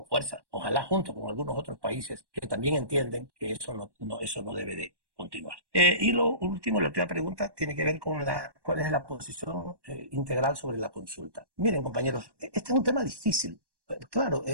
fuerza, ojalá junto con algunos otros países que también entienden que eso no debe de continuar. Y lo último, la última pregunta tiene que ver con cuál es la posición integral sobre la consulta. Miren, compañeros, este es un tema difícil. Claro,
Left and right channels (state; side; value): late; left; 1.1 ms